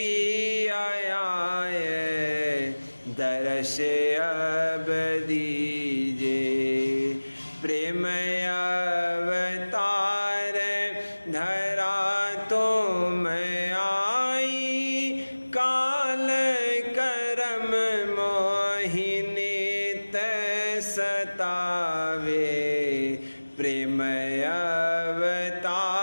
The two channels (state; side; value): inverted; both; correlation -1.00